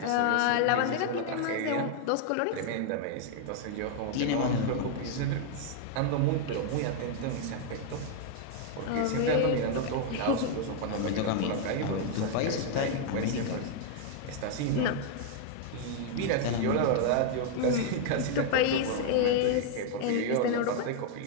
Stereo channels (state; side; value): different; both; correlation 0.00